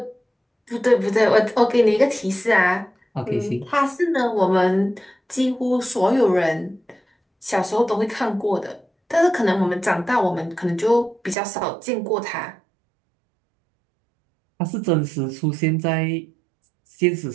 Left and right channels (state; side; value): drops out; left; at 11.4 s